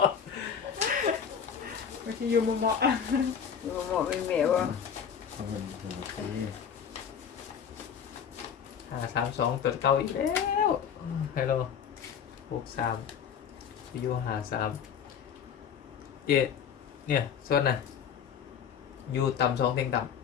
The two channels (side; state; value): right; quieter; 7.6 dB